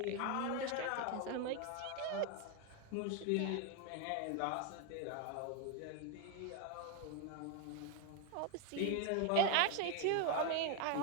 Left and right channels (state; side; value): different; both; correlation 0.01